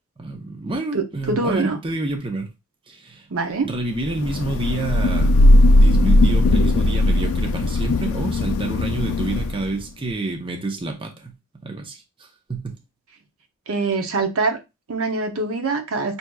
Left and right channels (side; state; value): both; normal; correlation 0.70